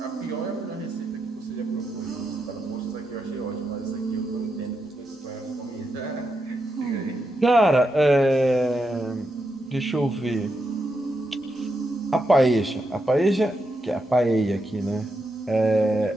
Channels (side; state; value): both; normal; correlation 0.84